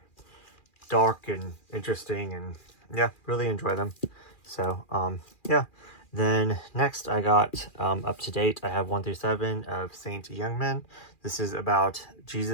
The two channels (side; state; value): right; late; 2.4 ms